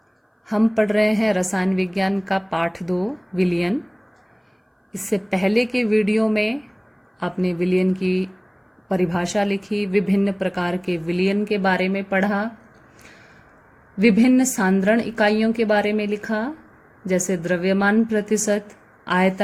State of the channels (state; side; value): identical; both; correlation 1.00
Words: हम पढ़ रहे हैं रसायन विज्ञान का पाठ 2 विलयन। इससे पहले के वीडियो में आपने विलयन की परिभाषा लिखी, विभिन्न प्रकार के विलयन के बारे में पढ़ा, विभिन्न सांद्रण इकाइयों के बारे में लिखा, जैसे द्रव्यमान प्रतिशत,